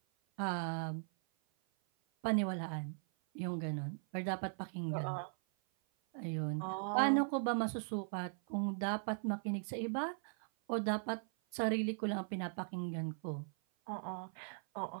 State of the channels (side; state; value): left; silent; 52 dB below the other